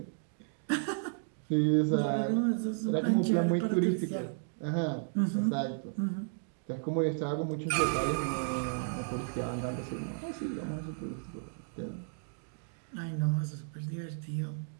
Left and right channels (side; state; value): left; silent; digital silence